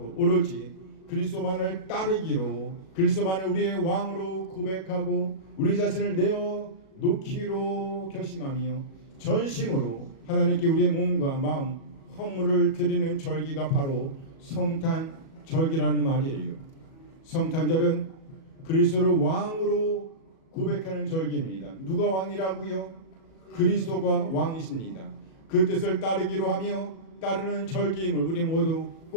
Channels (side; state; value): right; late; 37 ms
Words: 오로지 그리스도만을 따르기로, 그리스도만을 우리의 왕으로 고백하고 우리 자신을 내어 놓기로 결심하며 전심으로 하나님께 우리의 몸과 마음 헌물을 드리는 절기가 바로 성탄절기라는 말이에요. 성탄절은 그리스도를 왕으로 고백하는 절기입니다. 누가 왕이라고요? 그리스도가 왕이십니다. 그 뜻을 따르기로 하며 따르는 절기임을 우리 모두